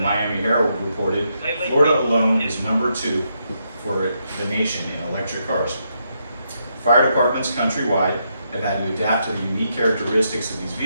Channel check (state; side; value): inverted; both; correlation -0.80